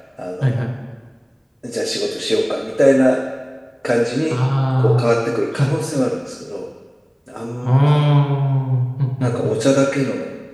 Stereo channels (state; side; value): identical; both; correlation 1.00